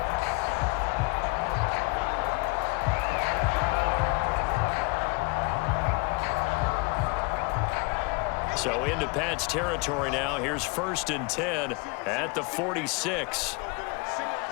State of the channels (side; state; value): right; quieter; 28.3 dB